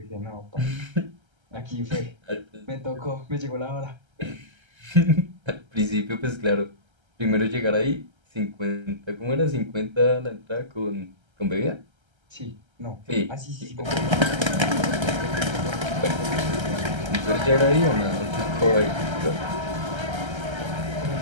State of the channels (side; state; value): left; late; 1.3 ms